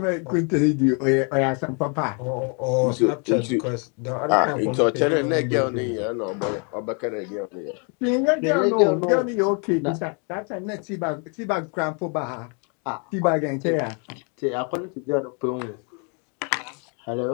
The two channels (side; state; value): right; quieter; 37.3 dB